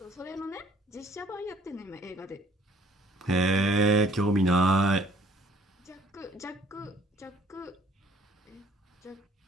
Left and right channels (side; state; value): both; normal; correlation 0.60